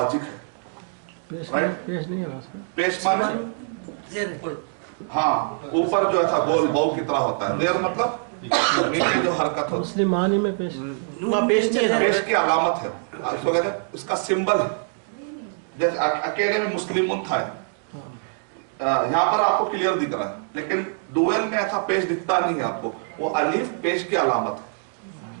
है। पेश नहीं है, पेश माने हाँ ऊपर जो ऐसा गोल बौ की तरह होता है, जेर मतलब नीचे जो हरकत होती है। मुस्लिम मानी में पेश पेश की अलामत है, इसको कहते हैं, इसका सिंबल है। जैसे अकेले में मुस्लिम था, यहाँ पर आपको क्लियर दिख रहा है, लेकिन डुएल में ऐसा पेश दिखता नहीं है आपको। वो अलीफ पेश की अलामत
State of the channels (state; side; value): silent; left; digital silence